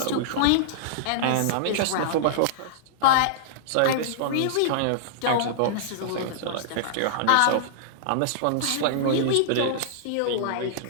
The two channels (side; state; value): both; different; correlation -0.02